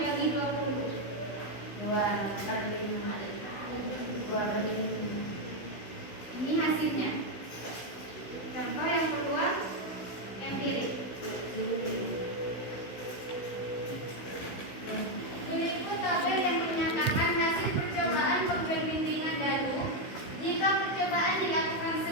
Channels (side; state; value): right; late; 16 ms